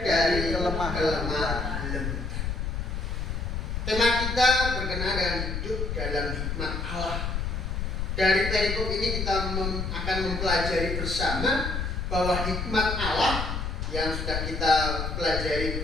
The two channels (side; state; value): left; noise; rumble, 3 dB below the sound